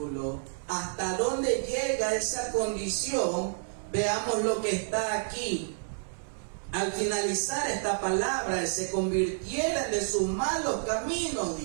¿Hasta dónde llega esa condición? Veamos lo que está aquí. Al finalizar esta palabra, se convirtieran de sus malos caminos,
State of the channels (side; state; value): left; silent; digital silence